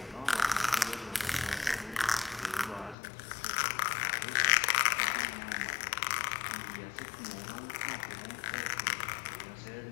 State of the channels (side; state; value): right; drops out; at 3.0 s